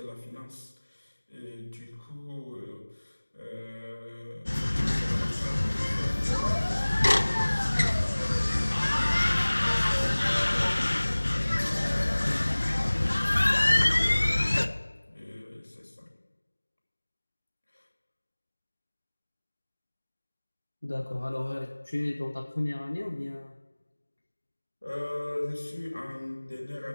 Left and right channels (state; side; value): inverted; both; correlation -1.00